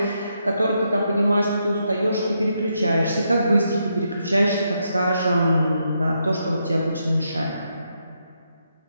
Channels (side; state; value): both; inverted; correlation -0.80